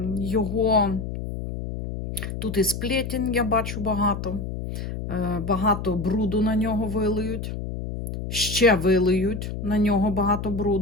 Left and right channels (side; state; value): left; noise; hum, 6 dB below the sound